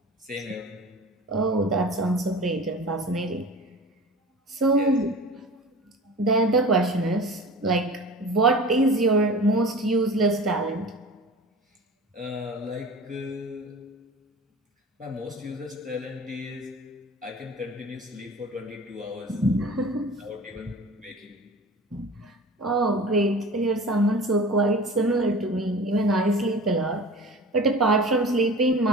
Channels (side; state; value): both; normal; correlation 0.38